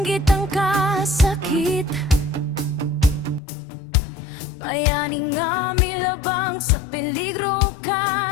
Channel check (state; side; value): drops out; right; at 3.4 s